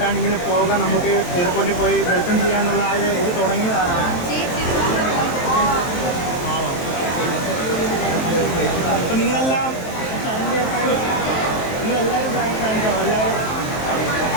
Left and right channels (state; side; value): late; right; 23 ms